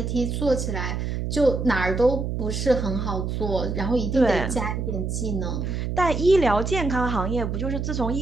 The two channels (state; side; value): noise; right; hum, 2 dB below the sound